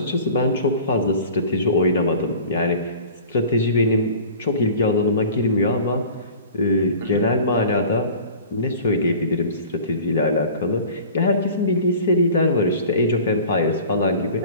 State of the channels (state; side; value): inverted; both; correlation -0.42